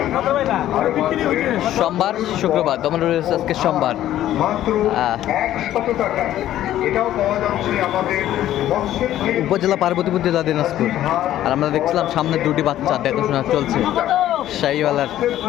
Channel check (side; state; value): right; quieter; 12.8 dB